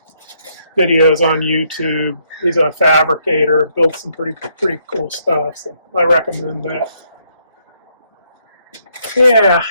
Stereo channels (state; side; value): inverted; both; correlation -0.73